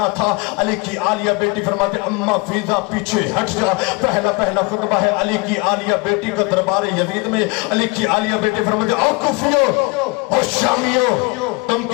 تھا۔ علی کی عالیہ بیٹی فرماتے اماں فیضا پیچھے ہٹ جا، پہلا خطبہ ہے علی کی عالیہ بیٹی کا دربار یزید میں۔ علی کی عالیہ بیٹی فرماتے او کوفیو او شامیو، تم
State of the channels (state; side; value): quieter; right; 27.1 dB